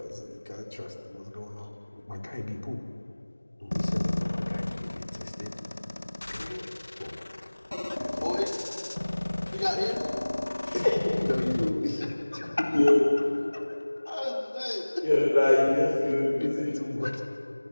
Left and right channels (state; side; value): inverted; both; correlation -1.00